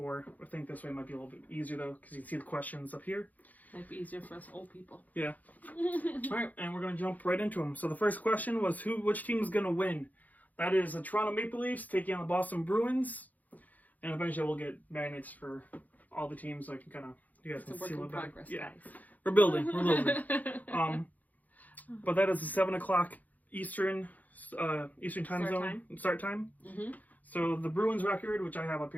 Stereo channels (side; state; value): right; late; 0.080 ms